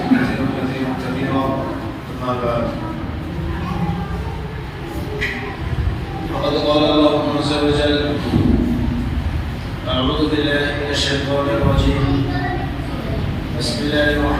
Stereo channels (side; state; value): both; identical; correlation 1.00